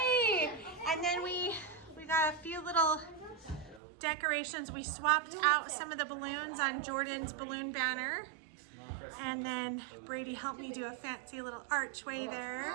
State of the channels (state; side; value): drops out; left; at 3.8 s